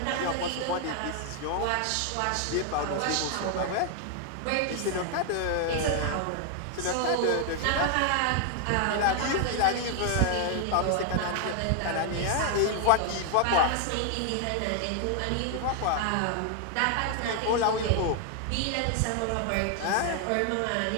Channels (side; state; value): both; different; correlation 0.00